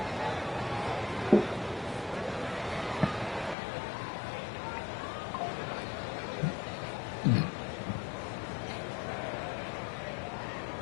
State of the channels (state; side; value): drops out; right; at 3.6 s